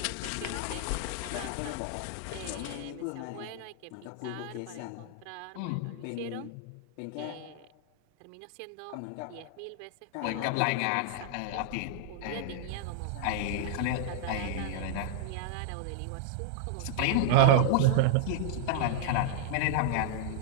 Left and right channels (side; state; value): both; different; correlation -0.01